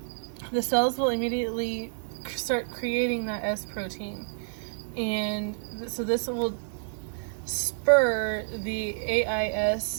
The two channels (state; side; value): silent; left; 59 dB below the other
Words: the cells will immediately start creating that S protein. And so this will spur the